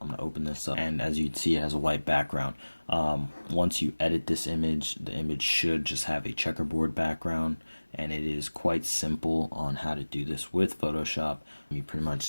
to open this up. And as you can see, it has a white background. Once you edit this image, the image should just have a checkerboard background. And it is quite simple on how to do this with Photoshop. You pretty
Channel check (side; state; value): both; inverted; correlation -1.00